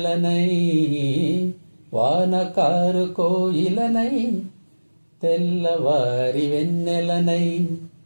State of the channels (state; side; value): inverted; both; correlation -1.00